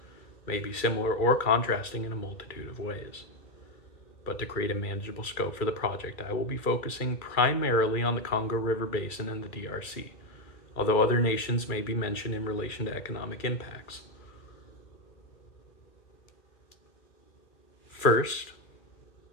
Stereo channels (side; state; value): right; late; 2.3 ms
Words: may be similar or contrasting in a multitude of ways. But to create a manageable scope for the project, I will be focusing primarily on the Congo River Basin and the DRC, although other nations may be mentioned in relation to economic impacts. First,